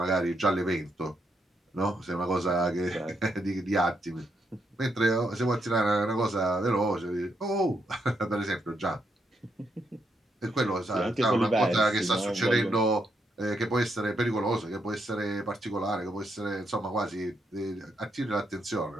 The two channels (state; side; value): normal; both; correlation 0.79